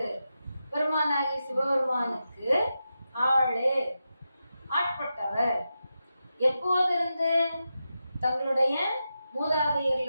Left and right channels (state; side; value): inverted; both; correlation -0.89